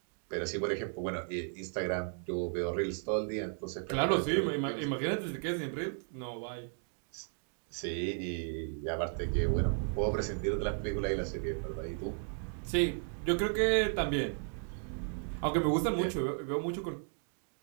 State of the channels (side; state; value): left; silent; 55 dB below the other